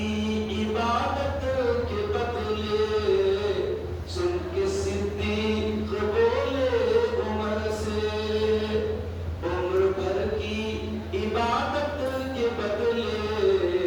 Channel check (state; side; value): identical; both; correlation 1.00